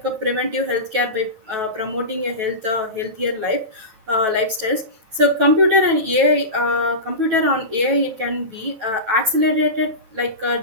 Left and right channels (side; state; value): left; late; 9.2 ms